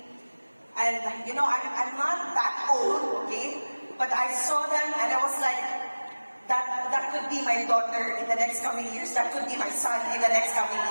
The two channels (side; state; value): both; inverted; correlation -1.00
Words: and you know, I'm not that old, okay? But I saw them and I was like, that could be my daughter in the next coming years, that could be my son in the next coming